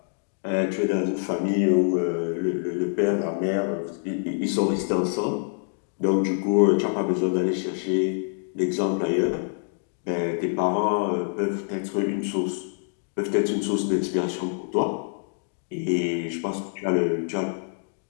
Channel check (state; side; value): silent; right; digital silence